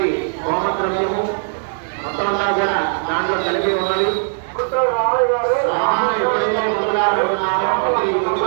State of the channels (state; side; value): silent; left; digital silence